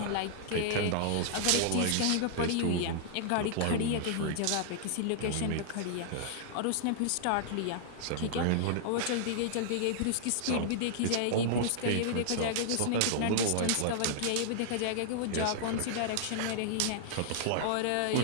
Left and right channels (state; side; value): different; both; correlation -0.01